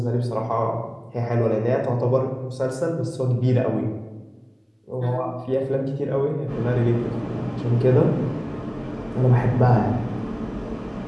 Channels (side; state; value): both; identical; correlation 1.00